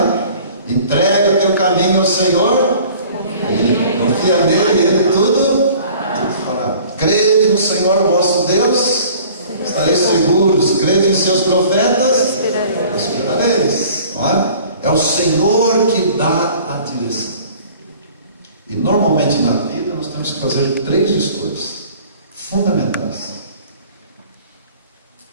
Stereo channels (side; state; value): both; inverted; correlation -0.49